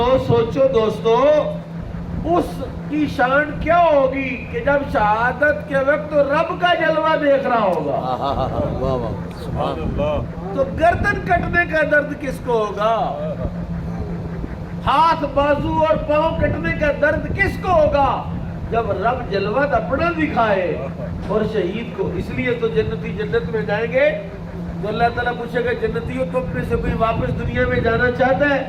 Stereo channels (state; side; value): identical; both; correlation 1.00